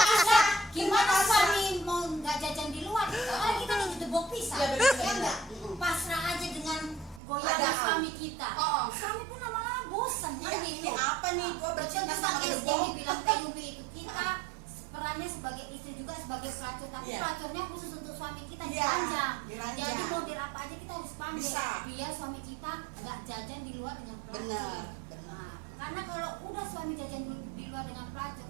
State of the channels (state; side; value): drops out; left; at 7.2 s